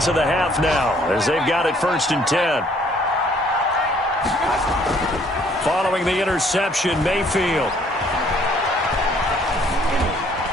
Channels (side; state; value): both; normal; correlation 0.62